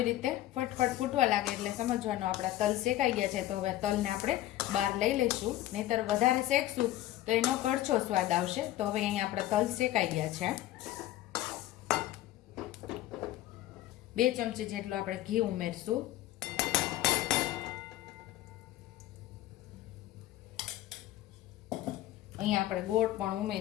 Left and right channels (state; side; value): quieter; right; 14.6 dB